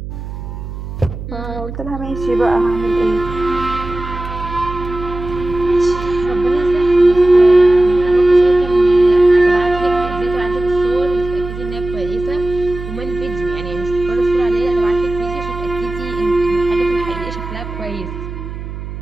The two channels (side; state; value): right; noise; hum, 9 dB below the sound